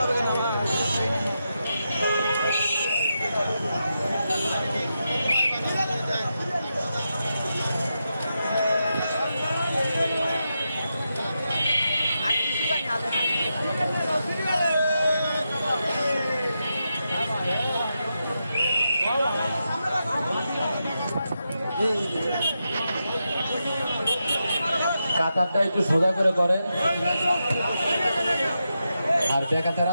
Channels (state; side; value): inverted; both; correlation -0.87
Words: কাতারটা একটু সোজা করে করে, আর বেকাতেরা